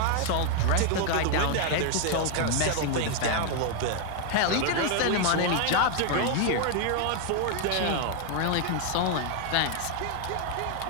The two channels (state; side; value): different; both; correlation 0.00